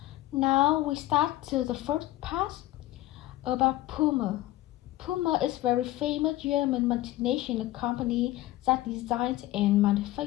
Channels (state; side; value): quieter; right; 16.4 dB